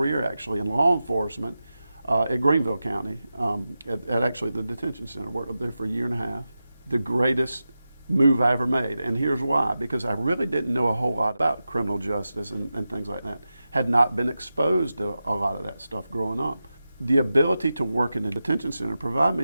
actually in law enforcement at Greenville County, at actually the detention center. Worked up there for a year and a half. The greatest move I ever made, and here's why: because I really didn't know a whole lot about criminal justice and things like that. Had not been exposed to a lot of that stuff growing up. The ability to work in the detention center provided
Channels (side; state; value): both; inverted; correlation -0.92